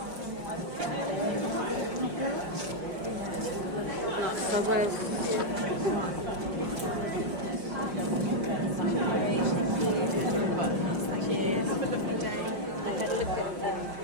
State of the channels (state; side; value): late; left; 5.6 ms